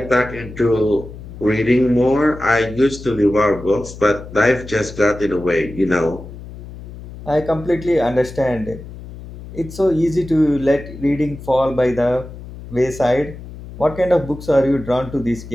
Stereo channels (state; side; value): noise; left; hum, 14 dB below the sound